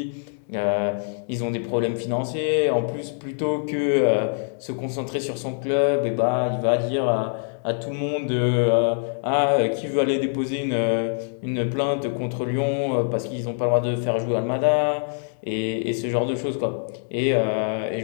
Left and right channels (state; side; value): silent; right; 62 dB below the other